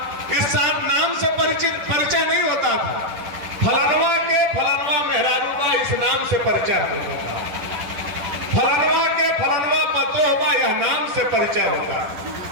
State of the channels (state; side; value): late; left; 10 ms